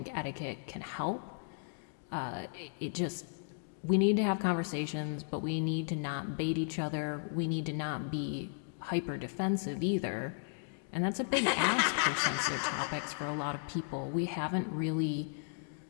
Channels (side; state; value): right; silent; digital silence